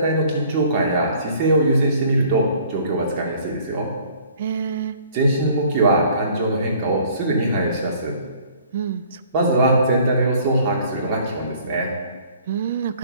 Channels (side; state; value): both; inverted; correlation -0.55